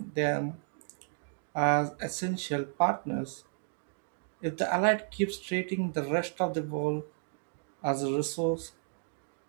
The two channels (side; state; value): left; silent; digital silence